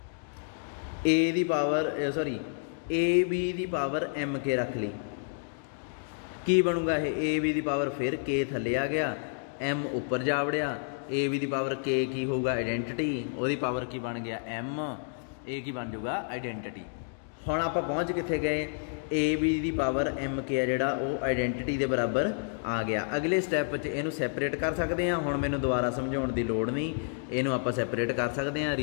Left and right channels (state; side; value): silent; right; digital silence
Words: a the power sorry a b the power m k रख ली, की बनूगा ये a b दी पावर फिर k थले आ गया, m उपर जा वड़िया, a b the power k की होगा आइडेंटिटी, ਉਹਦੀ पावर की बन गया m, a की बन जाऊगा आइडेंटिटी। हुण आपां पहुँच कित्थे गए, ए बी दी पावर एम के है जिहड़ा वो आइडेंटिटी के बराबर आ गया। अगले स्टैप च इहनूं सैपरेट कर सकते हैं। हुण मैनूं दोबारा समझाउण दी लोड़ नहीं, इहनूं आपां सैपरेट कर सकते हैं,